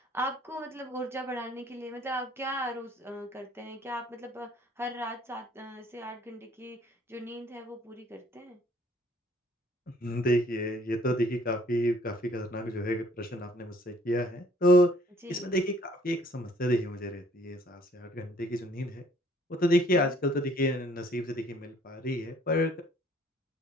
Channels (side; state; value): both; normal; correlation 0.60